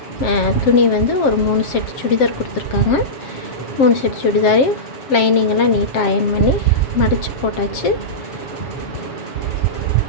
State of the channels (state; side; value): late; right; 7.5 ms